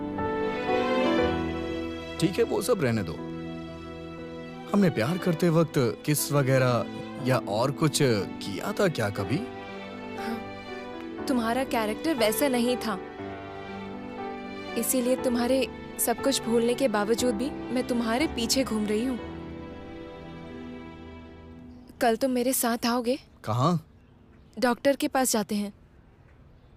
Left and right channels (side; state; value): both; identical; correlation 1.00